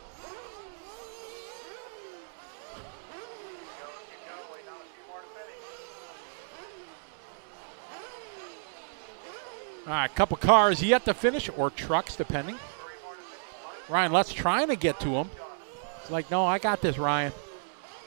All right, a couple cars yet to finish, or trucks, depending. Ryan Lutz's trying to get to him. It's like, no, I got this, Ryan.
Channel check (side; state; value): left; silent; 57 dB below the other